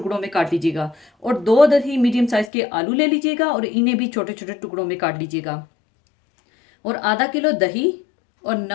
में काट लीजिएगा। और 2 अदद ही मीडियम साइज़ के आलू ले लीजिएगा और इन्हें भी छोटे छोटे टुकड़ों में काट लीजिएगा। और आधा किलो दही और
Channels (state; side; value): drops out; right; at 2.5 s